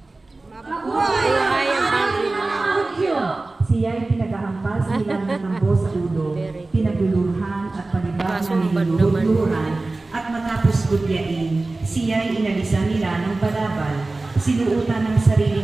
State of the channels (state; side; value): quieter; left; 3.2 dB